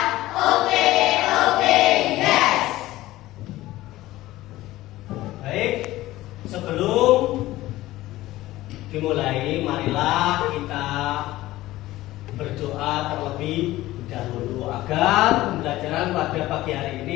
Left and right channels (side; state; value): right; quieter; 16.7 dB